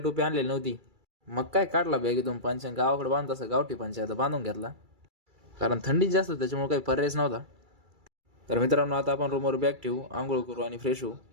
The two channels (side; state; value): left; late; 2.3 ms